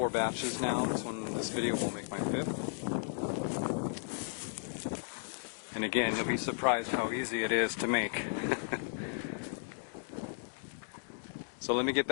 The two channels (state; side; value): silent; right; digital silence